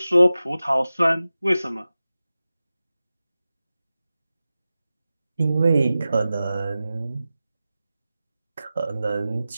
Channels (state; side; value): inverted; both; correlation -0.95